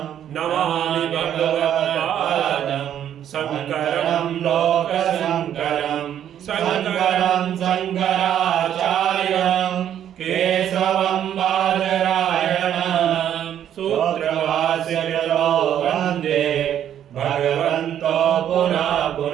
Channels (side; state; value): left; quieter; 10.2 dB